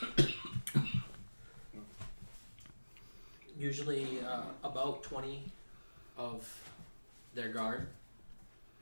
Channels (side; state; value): both; inverted; correlation -1.00